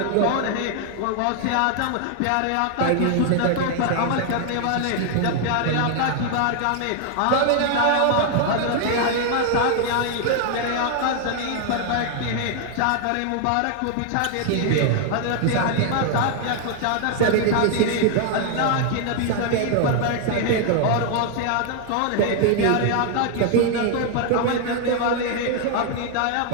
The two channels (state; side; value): different; both; correlation 0.00